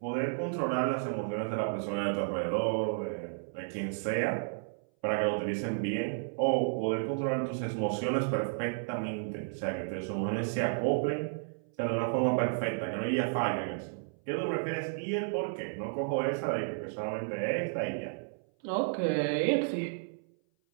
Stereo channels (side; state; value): left; silent; 56 dB below the other